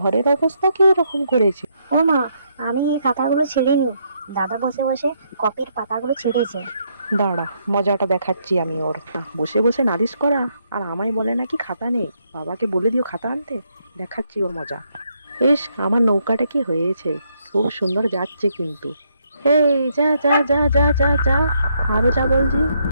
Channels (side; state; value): both; inverted; correlation -0.75